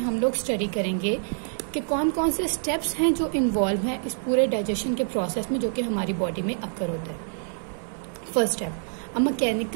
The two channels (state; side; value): silent; left; 61 dB below the other